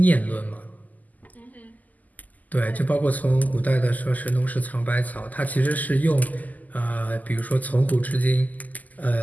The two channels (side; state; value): right; late; 0.080 ms